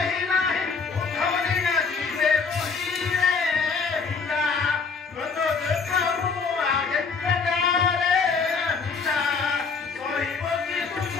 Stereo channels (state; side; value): quieter; right; 5.0 dB